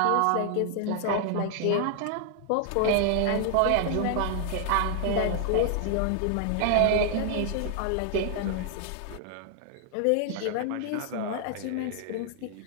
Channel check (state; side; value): different; both; correlation 0.00